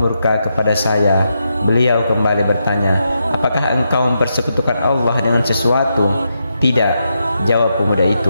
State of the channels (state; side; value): inverted; both; correlation -0.84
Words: murka kepada saya." Beliau kembali bertanya, "Apakah engkau mempersekutukan Allah dengan sesuatu?" "Tidak," jawab pemuda